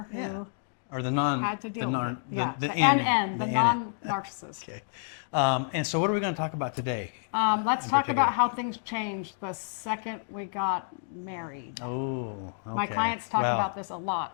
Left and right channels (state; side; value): silent; right; digital silence